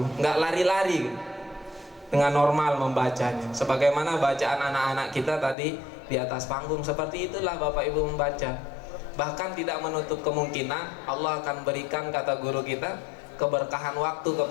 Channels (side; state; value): right; drops out; at 5.6 s